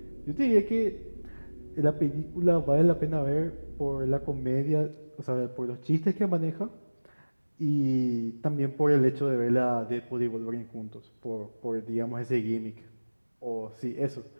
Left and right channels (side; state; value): both; inverted; correlation -1.00